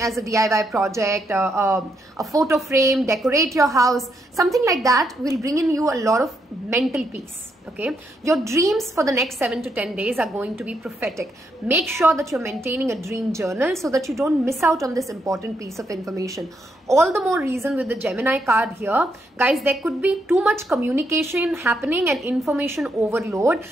a DIY project, a photo frame, decorate your house, something like that will bring in you a lot of mental peace. Okay, your dreams for the next 7 to 10 days are going to be prophetic. Make sure that you're maintaining a dream journal so that you don't miss out on this important piece of information. All the more reason with the Gemini card here, guys, there could be too much communication happening and information overload.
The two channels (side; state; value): both; normal; correlation 0.78